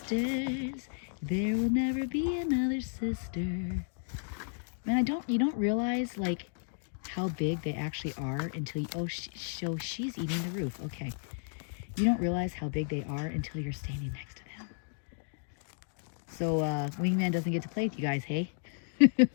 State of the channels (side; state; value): right; silent; digital silence